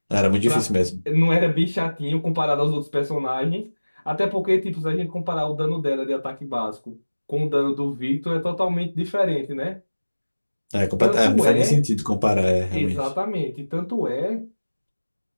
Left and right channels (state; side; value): inverted; both; correlation -1.00